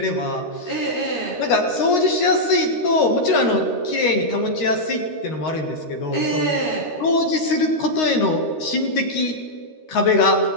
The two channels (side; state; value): right; late; 13 ms